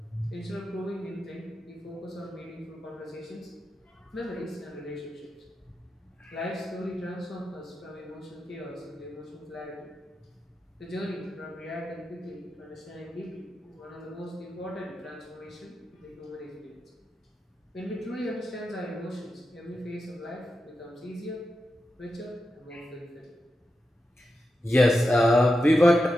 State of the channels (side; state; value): both; normal; correlation 0.89